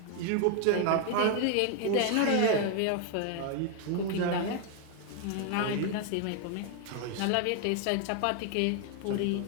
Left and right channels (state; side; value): different; both; correlation 0.00